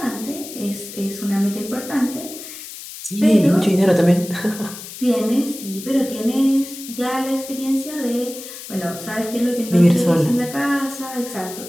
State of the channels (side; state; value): left; noise; hiss, 12 dB below the sound